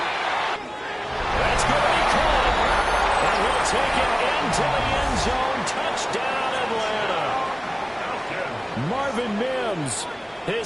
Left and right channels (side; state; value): both; identical; correlation 1.00